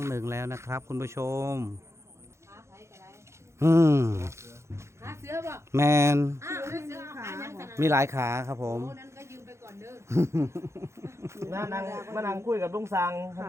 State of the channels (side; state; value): left; late; 0.13 ms